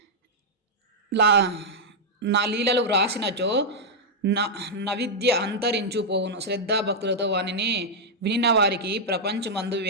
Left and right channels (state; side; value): normal; both; correlation -0.04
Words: నా లీలలు వ్రాసినచో నవిద్య అంతరించుపోవును. శ్రద్ధాభక్తులతో వానిని వినిన వారికి ప్రపంచమందు